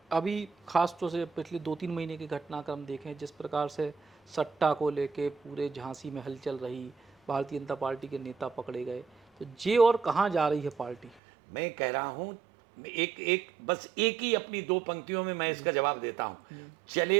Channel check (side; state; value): left; drops out; at 11.2 s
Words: अभी खास तौर से पिछले 2-3 महीने के घटनाक्रम देखें, जिस प्रकार से सट्टा को लेके पूरे झांसी में हलचल रही, भारतीय जनता पार्टी के नेता पकड़े गए, तो ये और कहाँ जा रही है पार्टी? मैं कह रहा हूँ, बस एक ही अपनी 2 पंक्तियों में मैं इसका जवाब देता हूँ।